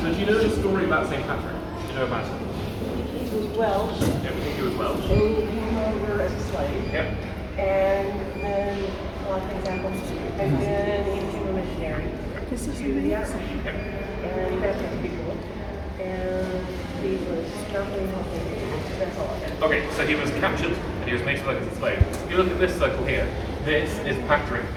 So do you know the story about St. Patrick? Do you know about it? He was Welsh, Yeah, we think he was Welsh. and he came over as a slave, Yep. and then a lot of things happened, and then he became a missionary to the Africa, Yep. and he baptized people, and he was not very healthy. That's all I got. Okay, so he was captured and he was made to work as a slave. If you look at this circle here, this is Patrick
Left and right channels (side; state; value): both; identical; correlation 1.00